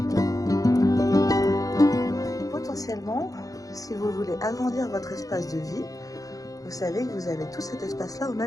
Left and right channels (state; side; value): late; right; 0.17 ms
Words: Potentiellement, si vous voulez agrandir votre espace de vie, vous savez que vous avez tout cet espace-là au